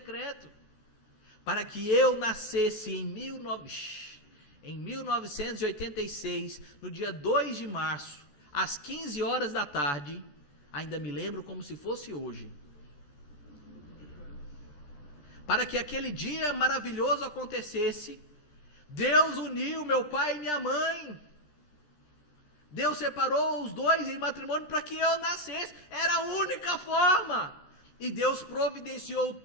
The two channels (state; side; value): late; right; 13 ms